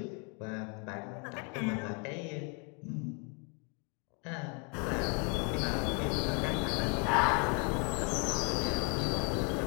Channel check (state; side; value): quieter; right; 35.9 dB